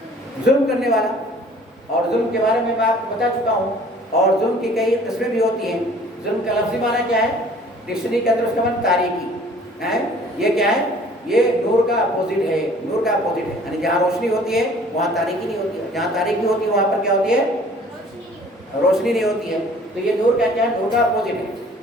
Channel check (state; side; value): normal; both; correlation 0.52